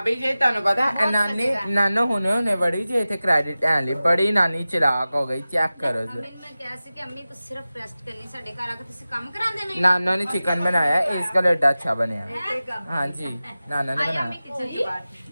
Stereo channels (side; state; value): both; inverted; correlation -0.96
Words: जे ਤੁਹਾਨੂੰ ਪਤਾ ਨਾਨੀ ਨਾਨੋ ਹੁਣੇ ਬੜੀ ਜੇ ਇੱਥੇ ਕ੍ਰੈਡਿਟ ਐ ਲਈ ਬੜੀ ਨਾਨੀ ਚਲਾਕ ਹੋ ਗਈ। ਚੈੱਕ ਕਰੋ ਜੀ। मैं ਕਿਹਾ ਸੀ ਕਿ ਅੰਮੀ ਤੁਸੀਂ ਸਿਰਫ ਰੈਸਟ ਕਰਨੀ, ਸਾਡੇ ਘਰ ਆ ਕੇ ਤੁਸੀਂ ਕੰਮ ਕਰਾਉਂਦੇ ਨਹੀਂ। ਨਾਨਾ ਨੇ ਚਿਕਨ ਬਣਾਇਆ, इसका लड्डा अच्छा ਬਣਿਆ। हाँ जी नाना ने बनाया। किचन के बाहर